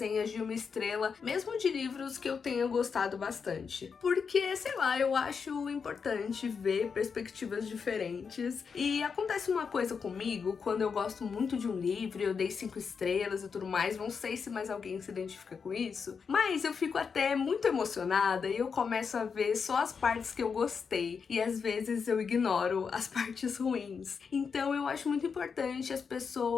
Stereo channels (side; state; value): right; quieter; 5.9 dB